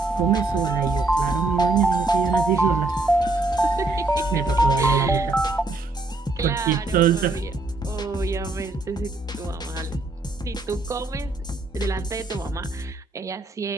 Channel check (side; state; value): left; quieter; 3.1 dB